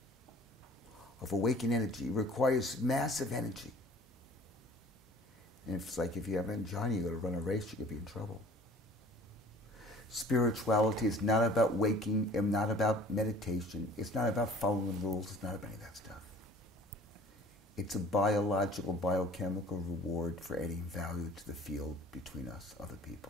of awakened energy requires massive energy. And it's like if you have angina, you got to run a race, you could be in trouble. Spirituality is not about waking, and not about meditation. It's not about following the rules. It's not about any of that stuff. It's a biological, biochemical reward for adding value to the field between us, other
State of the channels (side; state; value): both; normal; correlation 0.49